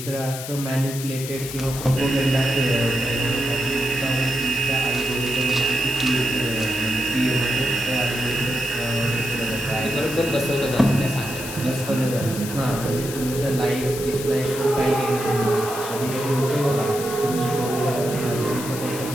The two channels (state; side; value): noise; left; hiss, 9 dB below the sound